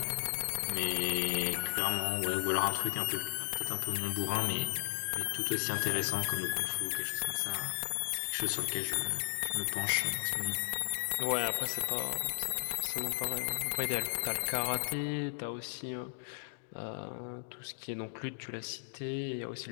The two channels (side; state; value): right; silent; digital silence